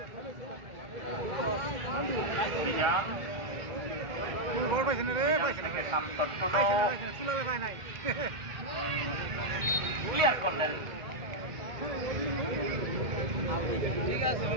গোল পাইছে না রে পাইছে না চুলাবে পায় নাই ক্লিয়ার করলেন ঠিক আছে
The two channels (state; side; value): late; left; 1.4 ms